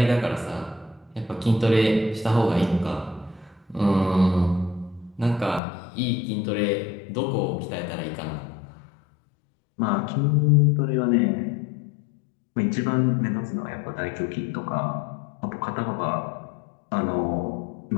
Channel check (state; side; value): drops out; right; at 5.6 s